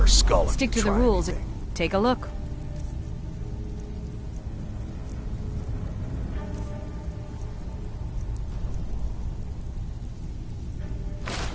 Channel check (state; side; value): identical; both; correlation 1.00